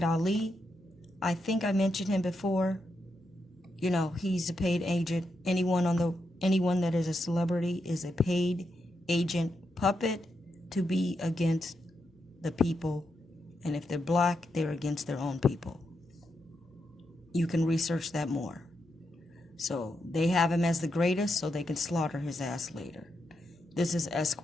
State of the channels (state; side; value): normal; both; correlation 0.84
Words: Ali. I think I mentioned him before. You know, he's a paid agent. Anyone that is a celebrity is a paid agent puppet to be against the people. And if they're black, they're against their own people. You can research that more. So they have him as the greatest so they can slaughter his ass later. This is